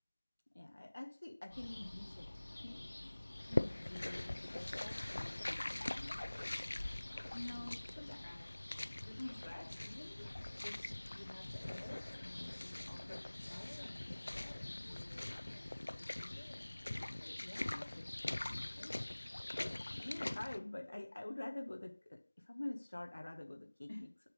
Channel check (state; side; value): inverted; both; correlation -1.00